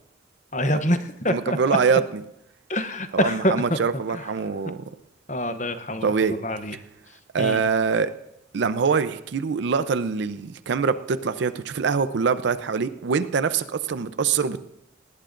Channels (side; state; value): left; quieter; 3.8 dB